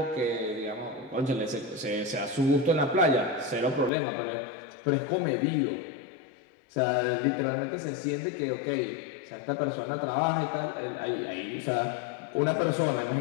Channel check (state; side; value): drops out; right; at 3.9 s